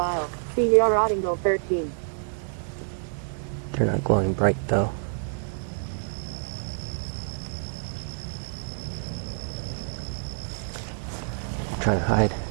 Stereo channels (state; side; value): silent; left; digital silence